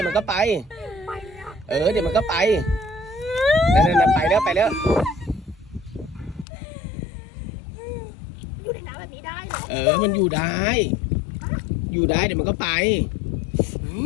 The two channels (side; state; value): right; drops out; at 6.5 s